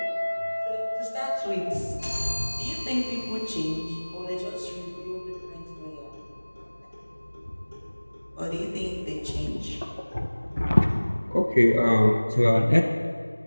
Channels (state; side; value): inverted; both; correlation -1.00